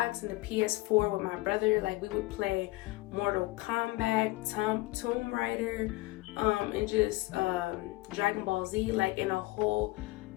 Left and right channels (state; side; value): quieter; right; 20.7 dB